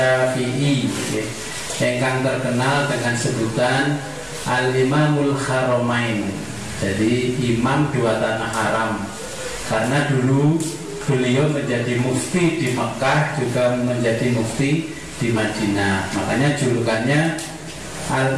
yang terkenal dengan sebutan Al-Imamul Haramain. Jadi imam dua tanah haram, karena dulu beliau menjadi mufti di Mekah, juga menjadi mufti di Madinah. Makanya julukannya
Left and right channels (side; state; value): both; identical; correlation 1.00